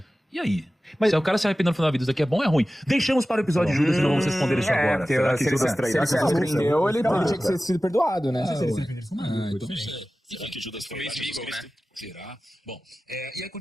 E aí? Mas se o cara se arrependeu no final da vida, isso daqui é bom ou é ruim? Deixamos para o episódio de Judas e não vamos responder isso agora. Será que Judas Se ele se arrependeu, ele tinha que ter sido perdoado, né? Então será que Judas foi inimigo, né? Será? Bom, e aí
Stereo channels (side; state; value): both; normal; correlation 0.96